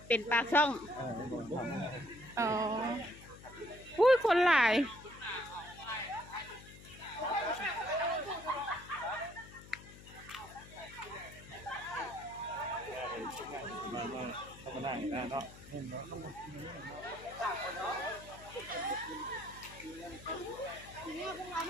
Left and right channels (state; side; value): noise; left; hum, 17 dB below the sound